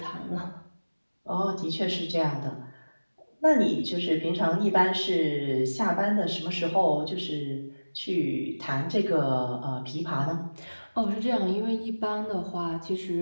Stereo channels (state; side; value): inverted; both; correlation -1.00